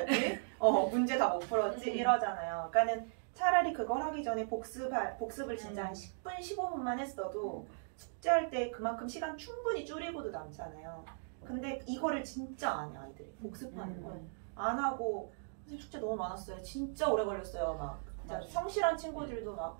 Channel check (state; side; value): silent; left; digital silence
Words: 문제 다 못 풀었지. 이러잖아요. 그러니까는 차라리 그걸 하기 전에 복습을 진짜 한 10분, 15분만 했어도 숙제할 때 그만큼 시간 충분히 줄이고도 남잖아요. 근데 이거를 진짜 안 해, 아이들이. 복습하는 걸. 안 하고, 숙제 너무 많았어요. 진짜 오래 걸렸어요. 막. 진짜 성실한 친구들도 막